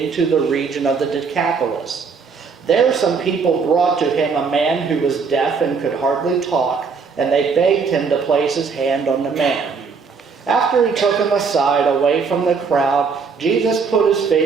the region of the Decapolis. There some people brought to him a man who was deaf and could hardly talk, and they begged him to place his hand on the man. After he took him aside, away from the crowd, Jesus put his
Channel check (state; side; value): quieter; left; 5.3 dB